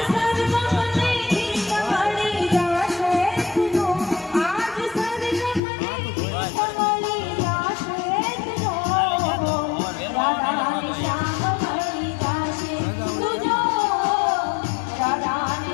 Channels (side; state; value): right; drops out; at 5.6 s